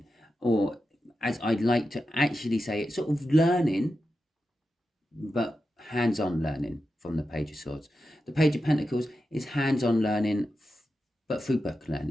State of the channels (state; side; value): normal; both; correlation 0.90